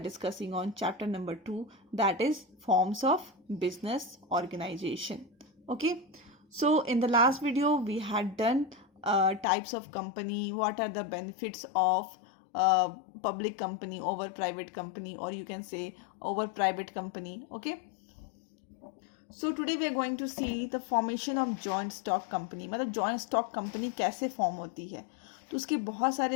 on chapter number 2, that is forms of business organization. Okay, so in the last video, we had done types of company, what are the benefits of public company over private company, or you can say over private company. Okay, so today we are going to see the formation of joint stock company. मतलब joint stock company कैसे form होती है, तो उसके बहुत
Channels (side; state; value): right; drops out; at 9.5 s